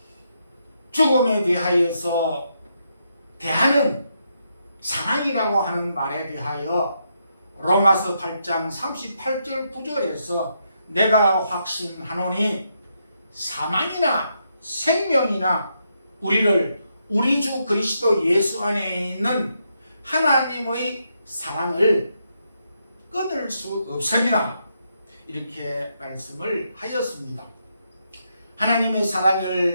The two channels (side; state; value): both; inverted; correlation -0.80